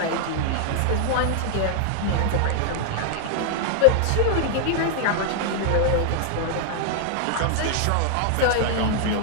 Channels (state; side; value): different; both; correlation 0.00